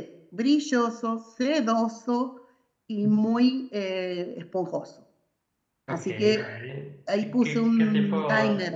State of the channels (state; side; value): identical; both; correlation 1.00